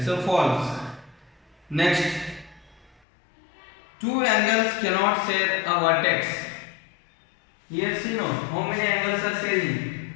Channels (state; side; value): drops out; right; at 3.0 s